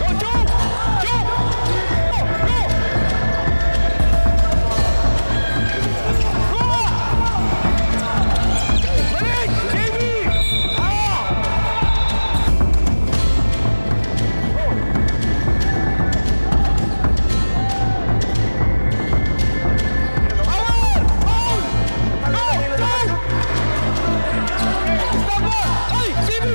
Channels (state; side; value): inverted; both; correlation -1.00